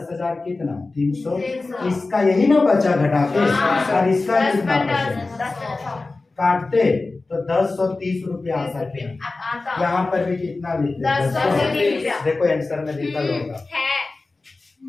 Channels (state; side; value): quieter; right; 3.5 dB